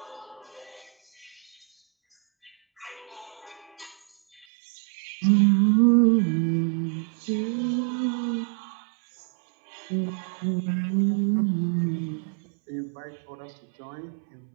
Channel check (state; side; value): drops out; left; at 4.5 s